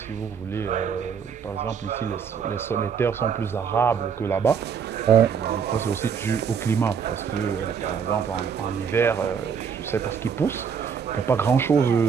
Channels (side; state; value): left; quieter; 6.8 dB